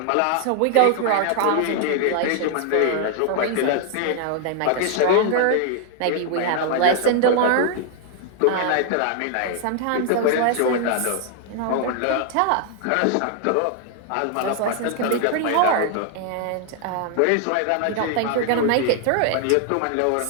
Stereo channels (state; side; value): different; both; correlation 0.00